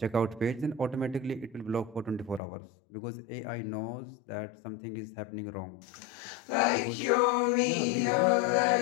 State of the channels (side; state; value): right; drops out; at 2.4 s